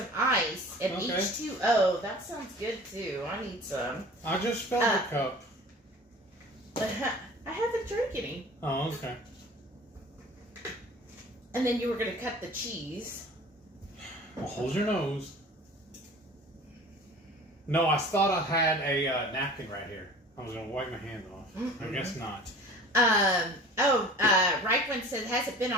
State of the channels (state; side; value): normal; both; correlation 0.43